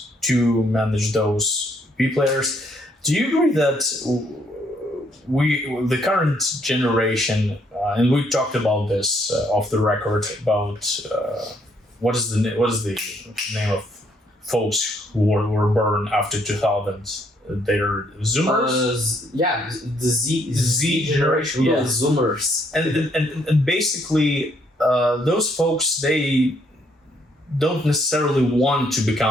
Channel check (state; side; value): normal; both; correlation 0.69